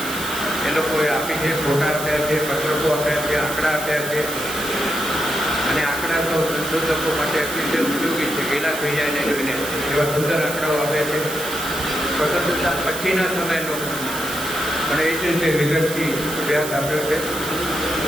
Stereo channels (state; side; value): noise; right; hiss, 8 dB below the sound